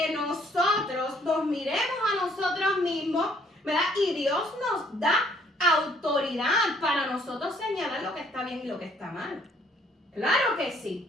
nosotros nos miremos a nosotros mismos, ¿verdad? Y Dios nos da autoridad para nosotros señalar lo que está bien y lo que está mal. Claro que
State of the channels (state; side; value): normal; both; correlation 0.63